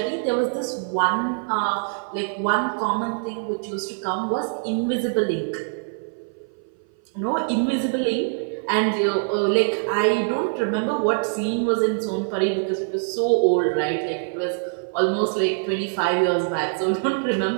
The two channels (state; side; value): silent; left; 57 dB below the other